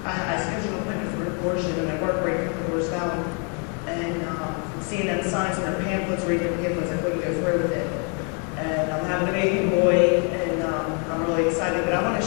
scheduled an appointment for an abortion, and I worked right at the doors down. And seeing them signs and their pamphlets, reading their pamphlets, I couldn't go through with it. And I'm having a baby boy, and I'm really excited. But I want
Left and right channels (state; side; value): quieter; right; 38.7 dB